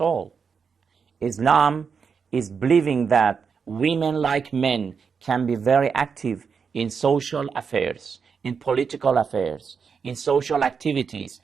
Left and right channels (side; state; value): left; quieter; 6.0 dB